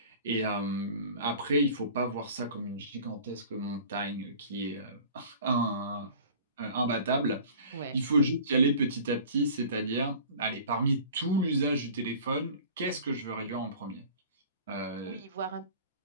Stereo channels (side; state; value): both; inverted; correlation -0.44